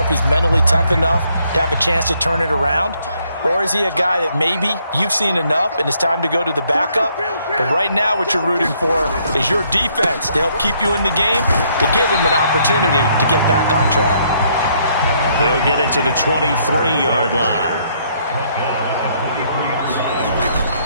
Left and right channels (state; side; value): inverted; both; correlation -0.69